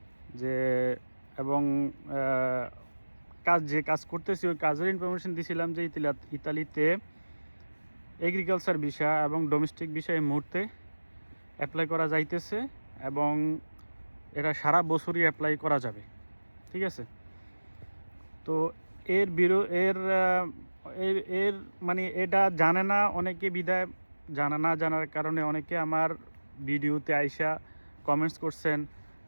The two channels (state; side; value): inverted; both; correlation -1.00